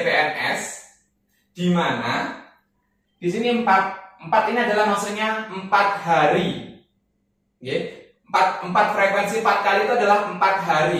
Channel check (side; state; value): both; identical; correlation 1.00